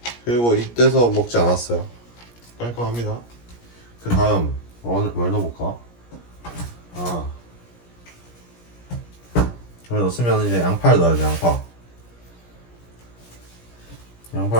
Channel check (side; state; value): right; late; 17 ms